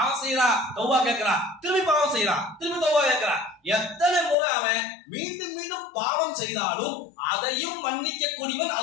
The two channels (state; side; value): drops out; right; at 4.4 s